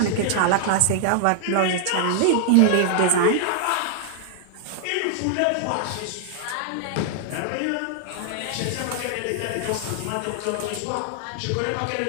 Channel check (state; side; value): different; both; correlation 0.00